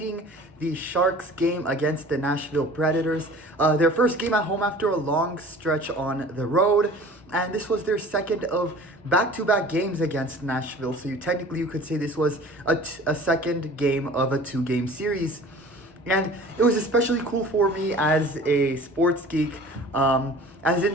the Sharks game against the Nashville Predators. Their first game at home after a long stretch on the road. And this was their second of back-to-back games against Nashville. So you could say this was a second game of a two-game series. And it was especially cool for me as a sports geek. As in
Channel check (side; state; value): both; normal; correlation 0.44